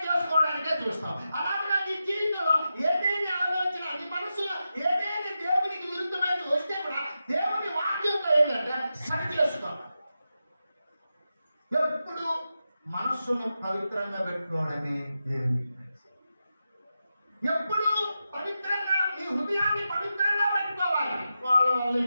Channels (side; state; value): both; inverted; correlation -0.90